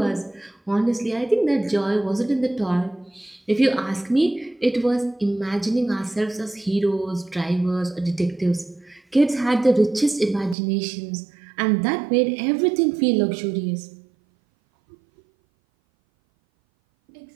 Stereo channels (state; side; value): drops out; left; at 10.6 s